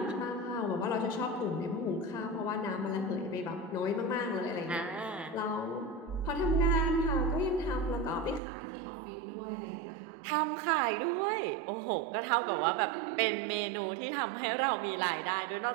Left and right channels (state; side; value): drops out; left; at 8.4 s